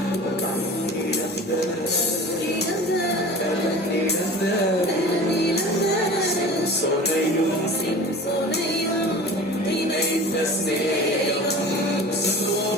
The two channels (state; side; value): normal; both; correlation 0.39